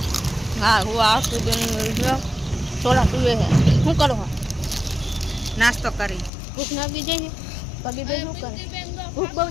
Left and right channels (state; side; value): drops out; right; at 6.3 s